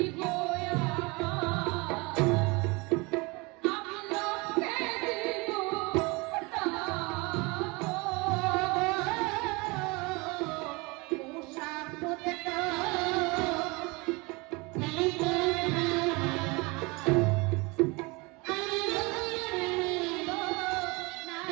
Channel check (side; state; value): left; quieter; 26.3 dB